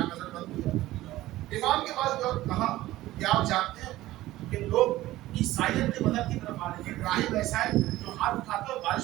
نظر بند کیا, امام کے پاس گئے, کہا کہ آپ جانتے ہیں کہ لوگ عیسائیت کے مذہب کی طرف آ رہے ہیں, راہب ایسا ہے جو ہاتھ اٹھاتا ہے اور بارش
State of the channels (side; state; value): left; quieter; 16.3 dB